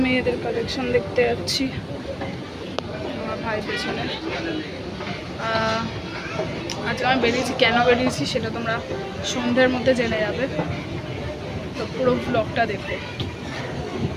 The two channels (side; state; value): both; identical; correlation 1.00